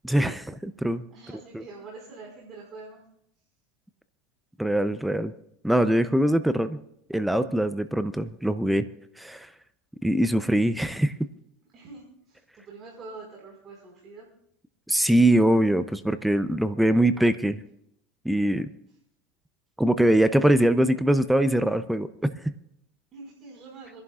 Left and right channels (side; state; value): both; normal; correlation 0.90